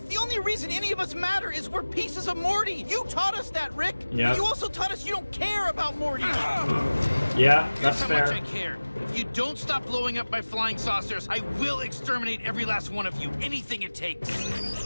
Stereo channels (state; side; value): inverted; both; correlation -1.00